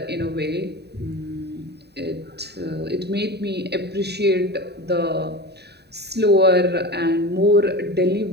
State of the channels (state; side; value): late; left; 0.48 ms